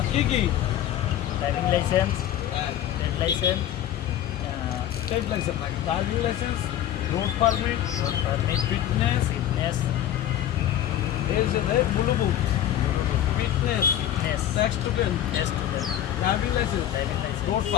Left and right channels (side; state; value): right; quieter; 11.6 dB